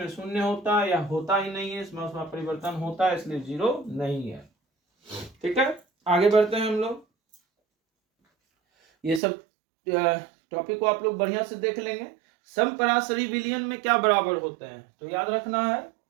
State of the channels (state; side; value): drops out; left; at 9.2 s